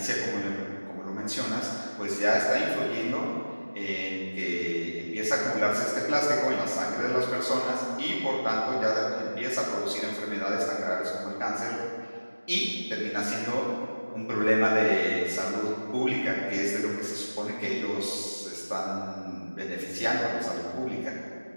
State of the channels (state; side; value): inverted; both; correlation -1.00